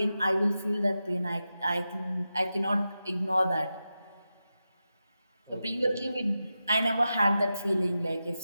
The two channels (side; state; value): both; inverted; correlation -0.91